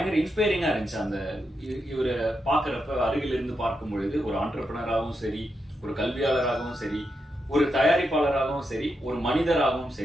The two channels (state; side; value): normal; both; correlation 0.85